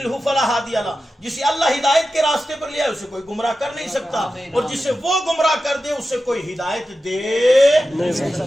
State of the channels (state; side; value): normal; both; correlation 0.92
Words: فلا ہادی لہ. جسے اللہ ہدایت کے راستے پر لیا اسے کوئی گمراہ کر نہیں سکتا، اور جسے وہ گمراہ کر دے اسے کوئی ہدایت دے نہیں